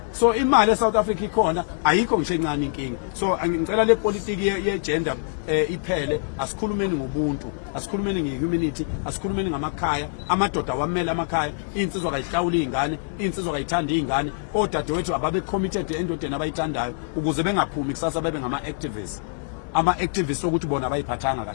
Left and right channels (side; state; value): right; silent; digital silence